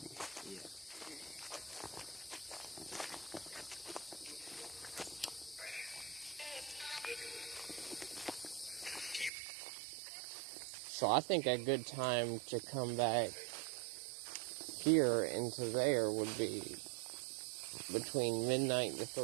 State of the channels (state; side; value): drops out; left; at 9.3 s